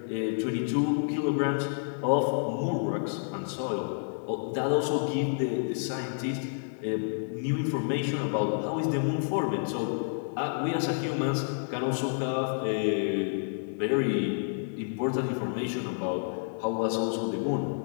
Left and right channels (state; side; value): silent; right; digital silence